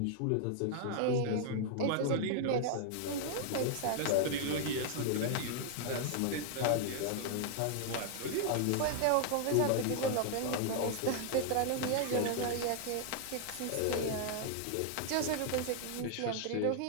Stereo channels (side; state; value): both; different; correlation 0.00